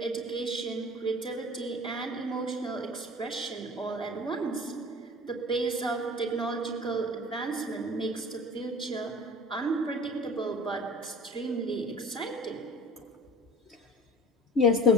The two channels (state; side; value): normal; both; correlation 0.42